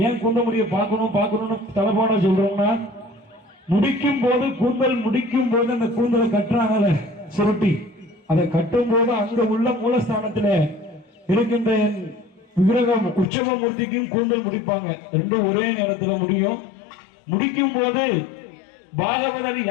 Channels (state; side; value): drops out; right; at 13.2 s